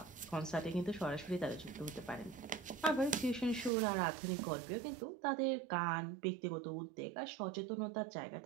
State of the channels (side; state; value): left; drops out; at 3.7 s